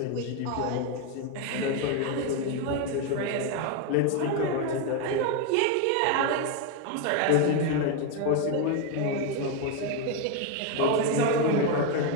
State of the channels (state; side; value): different; both; correlation 0.01